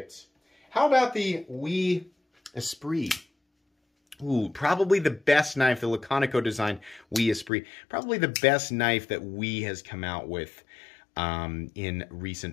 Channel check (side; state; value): right; drops out; at 7.5 s